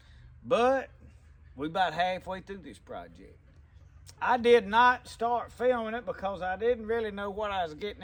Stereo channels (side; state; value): both; identical; correlation 1.00